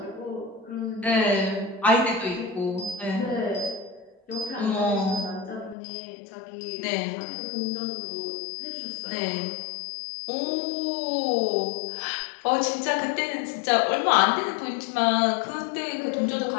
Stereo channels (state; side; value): drops out; right; at 5.8 s